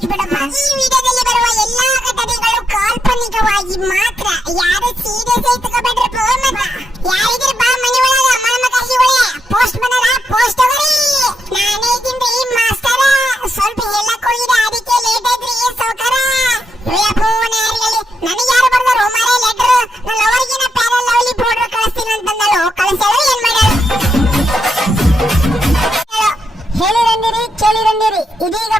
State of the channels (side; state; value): both; normal; correlation 0.82